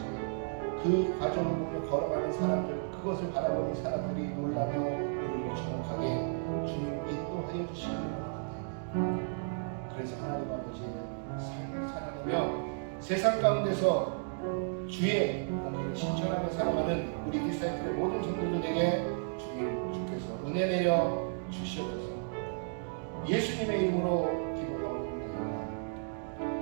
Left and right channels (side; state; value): left; silent; digital silence